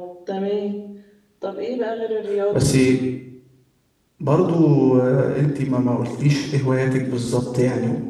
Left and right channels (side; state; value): both; identical; correlation 1.00